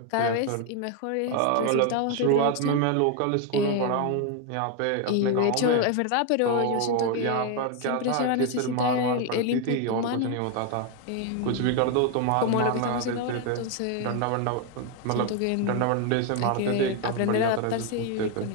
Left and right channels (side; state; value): both; different; correlation 0.01